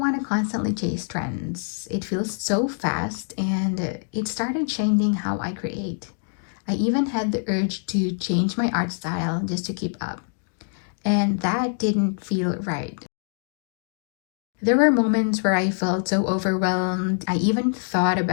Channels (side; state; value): right; silent; digital silence